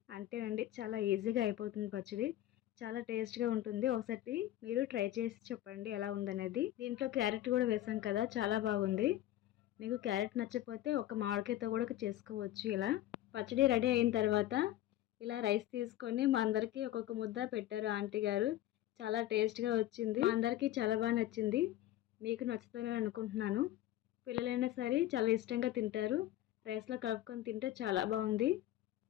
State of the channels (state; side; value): quieter; right; 13.8 dB